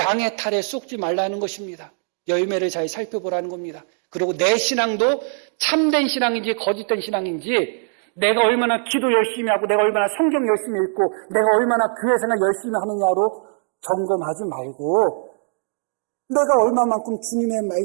탈에 속지 말라는 것입니다. 열매를 잘 살펴보라는 겁니다. 그리고 내 신앙도 참된 신앙인지 거짓된 신앙인지, 내가 얼마나 기도 열심히 하고 내가 얼마나 성경 열심히 읽고 내가 얼마나 교회 생활 열심히 하느냐로 점검하지 말고 내가 얼마만큼 주님의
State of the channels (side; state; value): left; silent; digital silence